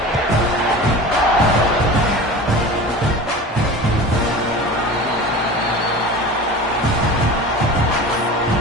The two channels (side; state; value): both; normal; correlation 0.35